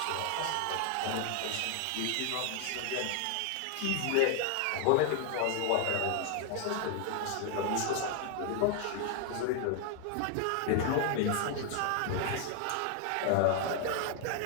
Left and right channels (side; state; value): both; different; correlation 0.00